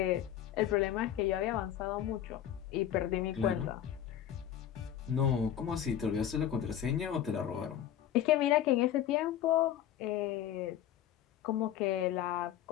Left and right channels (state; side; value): quieter; right; 10.7 dB